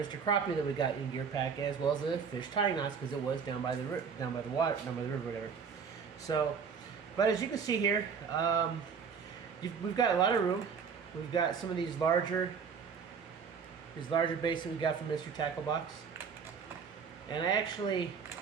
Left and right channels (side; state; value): left; quieter; 6.2 dB